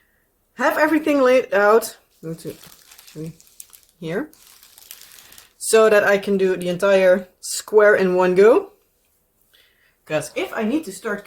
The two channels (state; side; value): identical; both; correlation 1.00